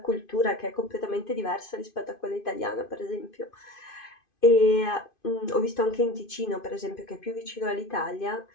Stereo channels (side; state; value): right; late; 2.5 ms